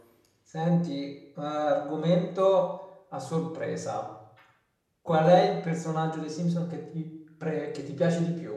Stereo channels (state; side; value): identical; both; correlation 1.00